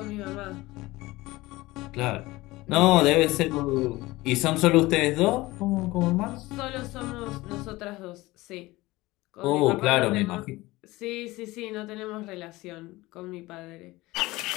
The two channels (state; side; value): quieter; right; 19.9 dB